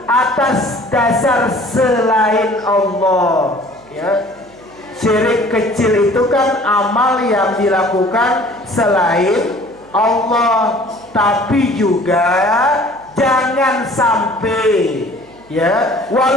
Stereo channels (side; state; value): right; noise; hum, 27 dB below the sound